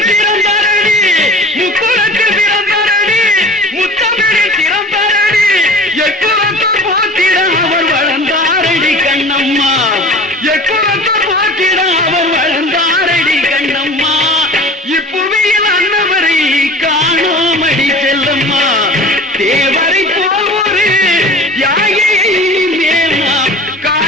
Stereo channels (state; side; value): normal; both; correlation 0.41